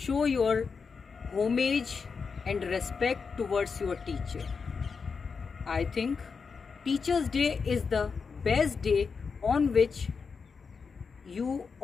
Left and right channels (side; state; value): right; quieter; 5.3 dB